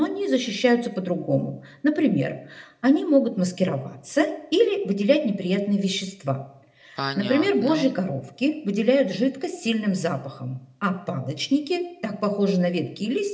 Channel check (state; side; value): identical; both; correlation 1.00